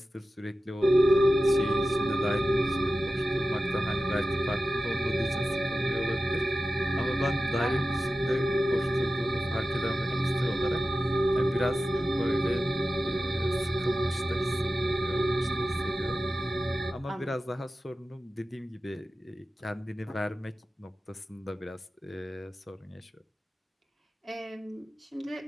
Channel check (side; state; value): both; normal; correlation 0.94